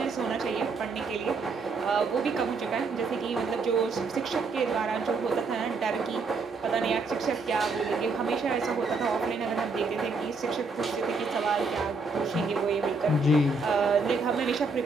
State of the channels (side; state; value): left; quieter; 4.0 dB